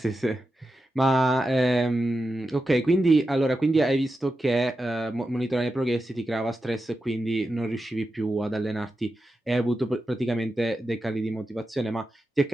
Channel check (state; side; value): normal; both; correlation 0.90